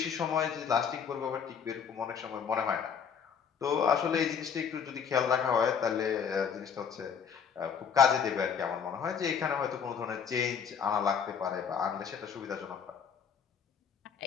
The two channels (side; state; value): right; quieter; 7.0 dB